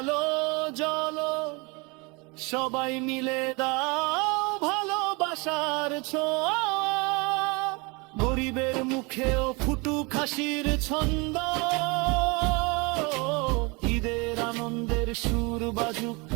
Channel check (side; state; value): left; quieter; 28.4 dB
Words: জ্বলো, সবাই মিলে দাও ভালোবাসার ছোঁয়া। গরিবের মুখেও ফুটুক হাসির ছন্দ, ঈদের আনন্দের সুর বাজুক